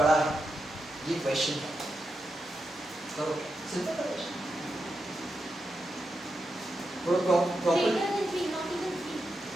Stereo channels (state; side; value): normal; both; correlation 0.87